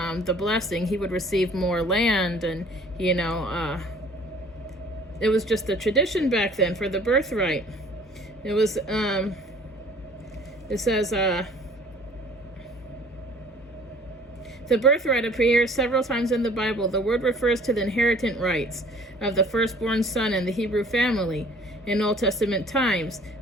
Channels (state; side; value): normal; both; correlation 0.53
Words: blessing. He would receive more land, and it was just a tradition back then for the birthright. It was it says the birthright appears several times in the Bible. The word refers to the inheritance rights of the firstborn son in the Hebrew family. In Old Testament times,